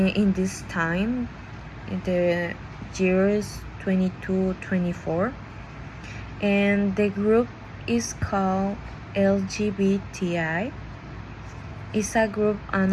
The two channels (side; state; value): both; identical; correlation 1.00